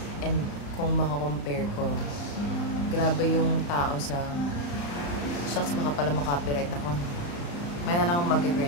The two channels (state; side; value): late; right; 35 ms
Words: And kung makakompare ko, grabe yung tao sa... Shucks, baka pala makapiright ako. May na lang akong